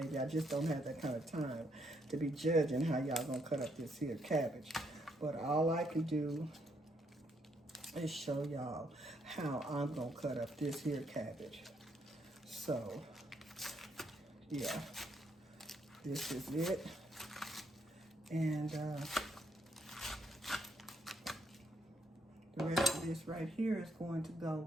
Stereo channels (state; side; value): normal; both; correlation 0.74